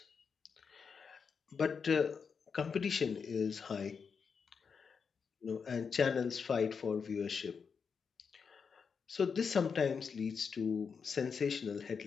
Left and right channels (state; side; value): quieter; right; 5.9 dB